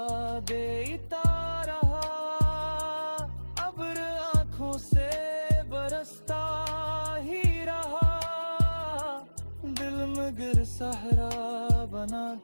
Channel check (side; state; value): both; inverted; correlation -1.00